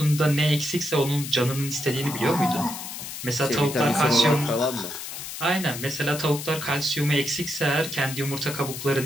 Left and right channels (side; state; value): left; noise; hiss, 8 dB below the sound